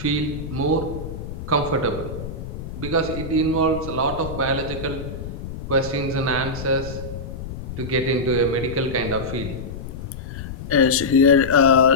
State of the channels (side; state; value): left; noise; rumble, 9 dB below the sound